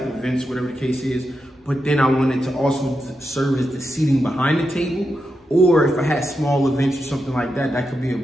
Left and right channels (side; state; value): both; normal; correlation 0.87